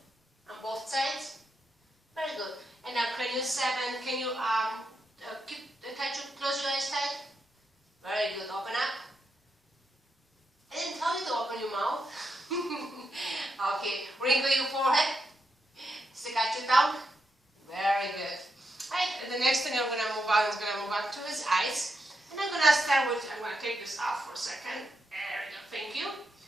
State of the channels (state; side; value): normal; both; correlation 0.84